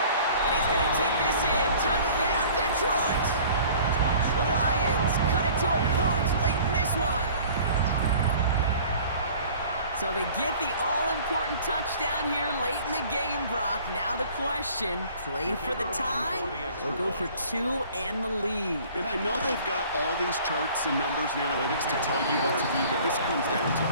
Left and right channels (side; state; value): both; inverted; correlation -0.49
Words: he's going to take this in. Touchdown, Detroit. The Lions cut it to a point late in this one. So they get the all-important touchdown here late in the game, Brock. Now the question, play for the tie or go for 2 and the lead? And I know they've got all these charts and numbers and analytics to tell you what to do, but this comes down to